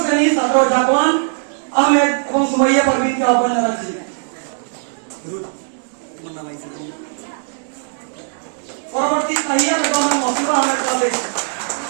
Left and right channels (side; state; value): left; silent; digital silence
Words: শ্রেণীর ছাত্র জাকওয়ান আহমেদ এবং সুমাইয়া পারভিনকে আহ্বান জানাচ্ছি। পরবর্তী তাহিয়া বেগম এবং মসুবা আহমেদ, ক্লাস 8।